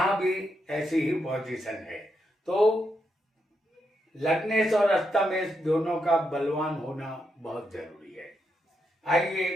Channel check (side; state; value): both; normal; correlation 0.82